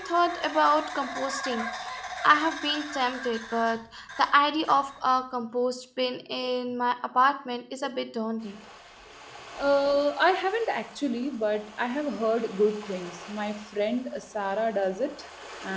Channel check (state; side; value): identical; both; correlation 1.00